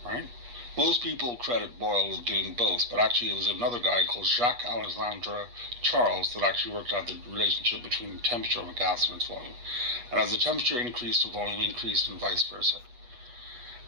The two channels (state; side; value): late; left; 8.3 ms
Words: right? Most people credit Boyle with doing both, but actually it was another guy called Jacques Alexandre Charles that actually worked out the relationship between the temperature of a gas and its volume. And as the temperature increased, the volume increased, and vice versa.